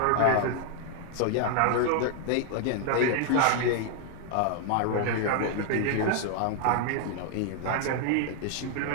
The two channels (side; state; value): both; different; correlation 0.00